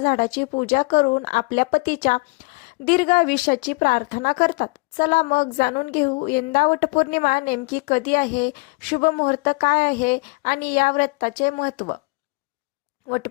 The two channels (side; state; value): right; quieter; 28.3 dB